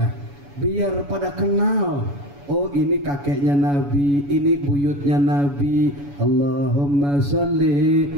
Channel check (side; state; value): left; late; 7.1 ms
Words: biar pada kenal. Oh ini kakeknya Nabi, ini buyutnya Nabi. Allahumma sholli